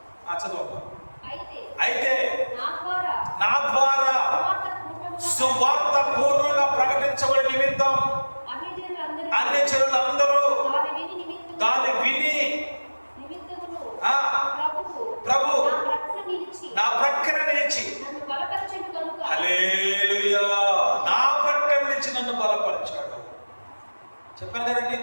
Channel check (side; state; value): both; inverted; correlation -1.00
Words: చదువు. అయితే నా ద్వారా సువార్త పూర్వంగా ప్రకటించబడి నిమిత్తం అన్ని జనులందరూ దాన్ని విని ప్రభు నా ప్రక్కన నిలిచి హల్లెలూయా నా ప్రక్కన నిలిచి నన్ను బలపరిచాడు. చెప్పాను కదండి,